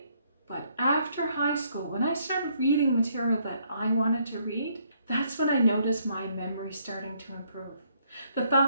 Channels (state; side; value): inverted; both; correlation -0.69